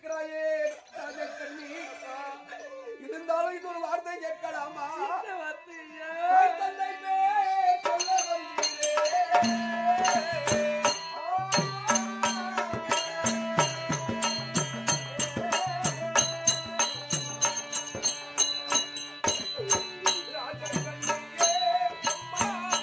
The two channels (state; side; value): identical; both; correlation 1.00